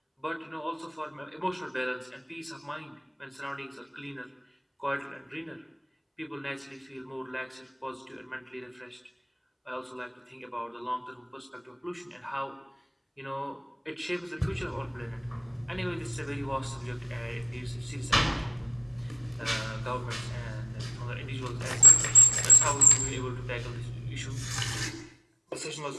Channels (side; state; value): both; identical; correlation 1.00